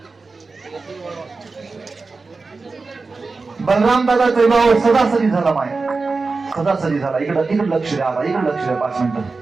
बलराम दादाचा विवाह सदासरी झाला माय, सदासरी झाला. इकडं लक्ष द्या, इकडे लक्ष द्या 5 मिनिटं.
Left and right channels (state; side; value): quieter; left; 4.0 dB